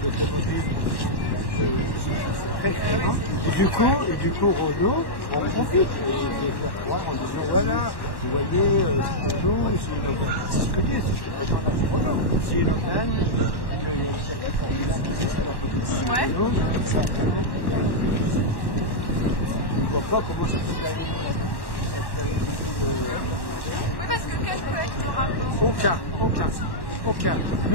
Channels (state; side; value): late; right; 1.1 ms